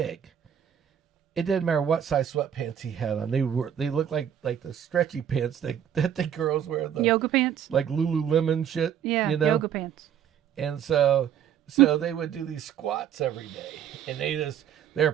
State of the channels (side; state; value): left; quieter; 9.3 dB